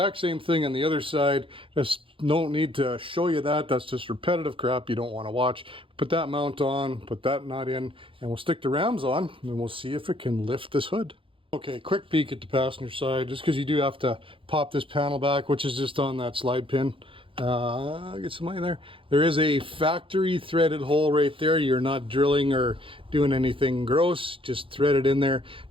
same thing on the other side. Just don't need to show you that. That's just repetitive crap you don't want to watch. Put that mount on, put that nut in, and we'll stick the rams on, and we'll see if it can lift this hood. Okay, quick peek at the passenger side, just because you do have to pop this panel back, which is just on that slide pin. Get some money there. There is a factory threaded hole right there. You're not drilling or doing anything gross, just thread it in there.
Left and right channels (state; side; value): late; left; 0.25 ms